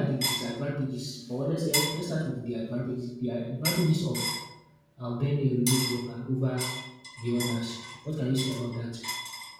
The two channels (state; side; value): identical; both; correlation 1.00